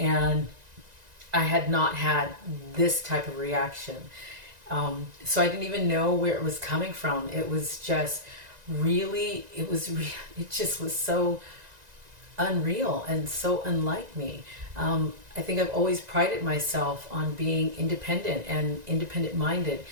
I had not had this type of reaction. So I didn't even know where it was coming from. It was just really, it just was so unreal and so unlike me. I think I've always prided myself on being independent and independent minded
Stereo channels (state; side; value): late; left; 1.9 ms